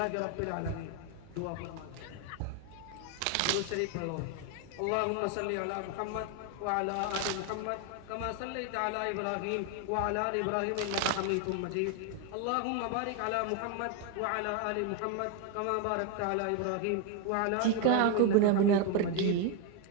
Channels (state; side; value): different; both; correlation 0.01